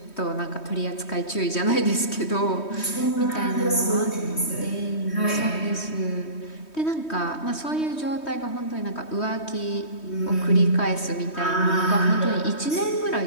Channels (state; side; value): late; right; 3.2 ms